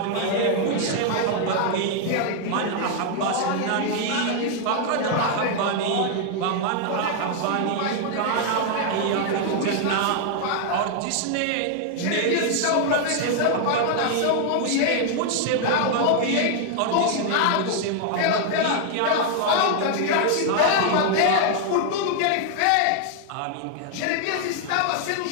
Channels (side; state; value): both; different; correlation 0.00